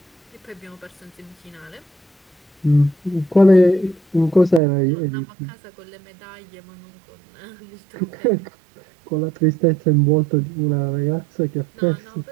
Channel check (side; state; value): left; drops out; at 4.6 s